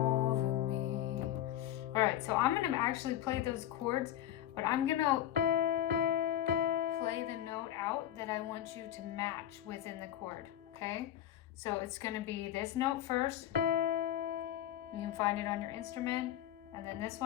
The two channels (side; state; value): right; quieter; 11.8 dB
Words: me. All right, so I'm gonna actually play those chords, but I'm gonna play the note out that I want you to match within the chord, okay? So it's gonna be this note first. You can find it on your instrument, and then this